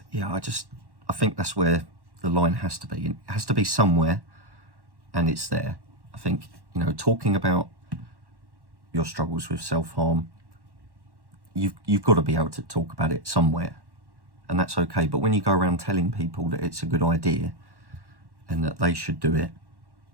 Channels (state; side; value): late; left; 1.1 ms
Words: yeah, I think that's where the line has to be. It has to be somewhere, and it's there. I think, talking about your struggles with self-harm, you've got to be able to talk about it somewhere, and that's okay. But when you go around telling people that it's a good idea and that they should do it,